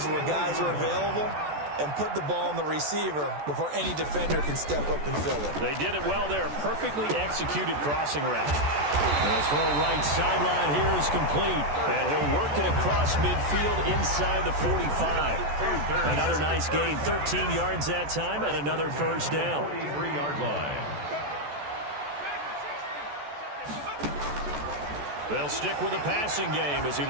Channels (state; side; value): late; left; 14 ms